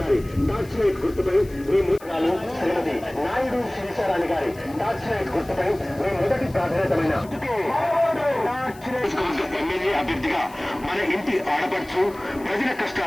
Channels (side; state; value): left; noise; hiss, 23 dB below the sound